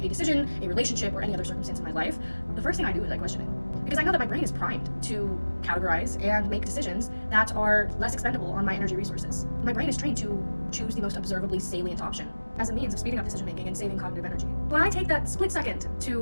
a decision, a relationship, or any other circumstance in my life, the first thing I do is I question it. Because I know that my brain is primed to categorize and make decisions that are less expendable on my energy resources. My brain is trained to choose the most observably salient option as a means of speeding up decision making and saving cognitive energy. When I take that split second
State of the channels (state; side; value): inverted; both; correlation -1.00